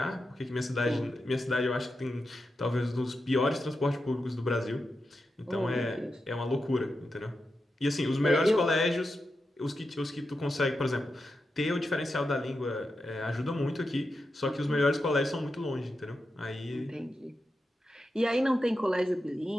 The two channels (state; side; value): normal; both; correlation 0.88